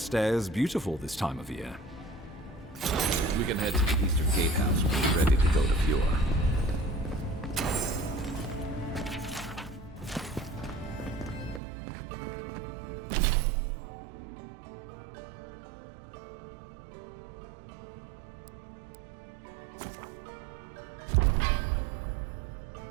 is beautiful this time of year. We can head to the Eastern Gatehouse when we're ready to go to Fjord.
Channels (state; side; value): drops out; left; at 11.6 s